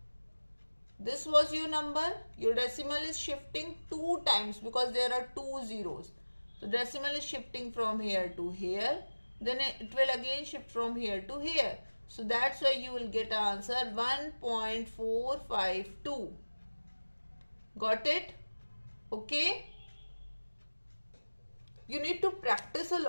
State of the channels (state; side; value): inverted; both; correlation -1.00